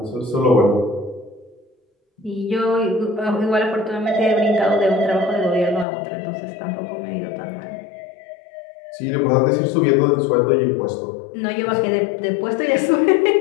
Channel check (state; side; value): drops out; right; at 5.9 s